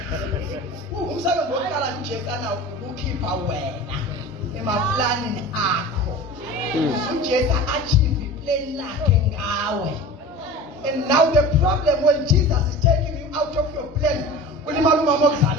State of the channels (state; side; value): normal; both; correlation 0.36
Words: Umsebenzi wokuqala uJesu ukukhipha wena emaplanini akho. uJesu achieve iplan lakhe ngawe. And now the problem when Jesus is taking you out of your plan, ulimala umama